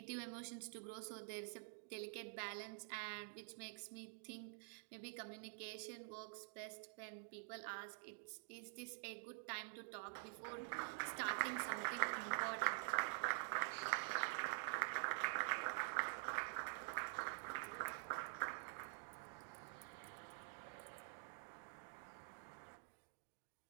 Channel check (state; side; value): silent; left; digital silence